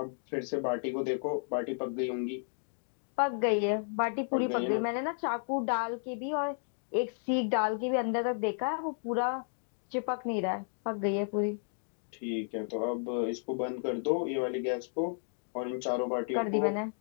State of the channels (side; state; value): right; silent; digital silence